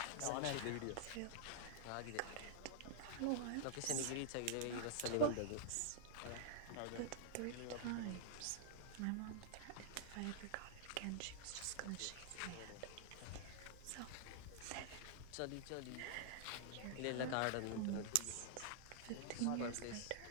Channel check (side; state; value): both; different; correlation -0.01